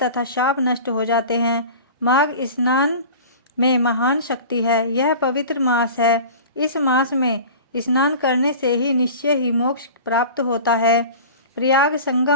तथा शाप नष्ट हो जाते हैं। माघ स्नान में महान शक्ति है। यह पवित्र मास है। इस मास में स्नान करने से ही निश्चय ही मोक्ष प्राप्त होता है। प्रयाग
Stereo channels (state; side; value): inverted; both; correlation -0.37